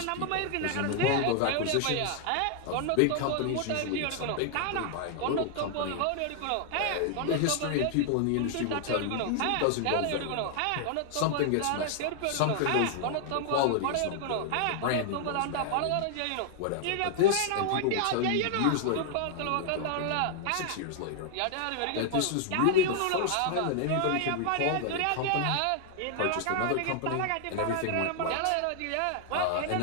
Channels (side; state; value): both; different; correlation 0.00